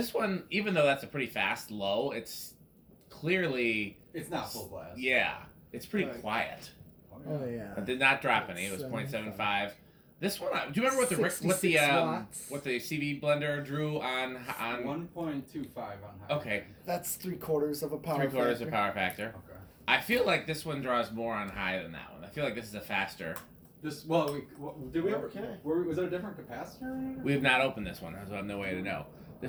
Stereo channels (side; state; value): both; identical; correlation 1.00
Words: one, even though that's a pretty fast low, it's clearly... It's not full blast. Yeah. It's pretty quiet. Oh yeah. It did not drop any. It was 0.75. This one, do you remember what the CV blender drew on 1.25 on high. Okay. That's 3/4 of a power 3/4 of power factor. Okay. I feel like this one draws more on high than that one. I feel like this is a faster. Did we ever? Okay. Was there a different capacitor? We have not opened this one, so I have no way to know.